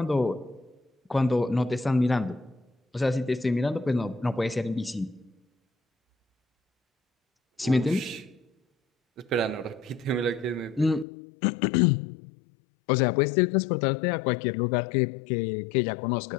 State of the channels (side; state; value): right; drops out; at 11.1 s